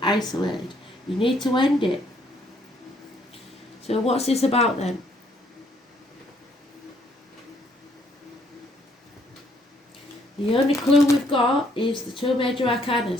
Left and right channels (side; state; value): both; normal; correlation 0.67